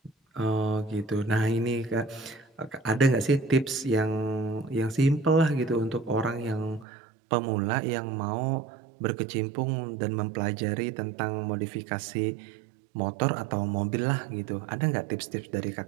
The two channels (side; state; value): left; drops out; at 6.9 s